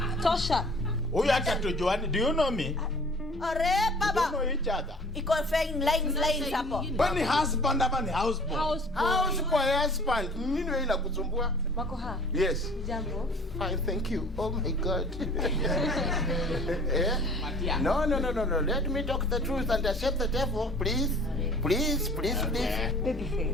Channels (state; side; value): normal; both; correlation 0.49